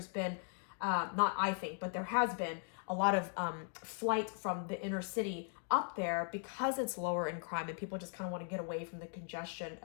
been, but there has been a lot of flight from the inner city up there because it's lower in crime and people just kind of want to get away from the congestion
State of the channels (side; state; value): right; silent; 52 dB below the other